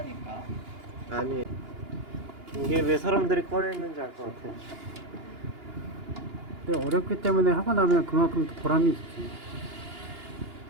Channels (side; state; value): left; late; 2.9 ms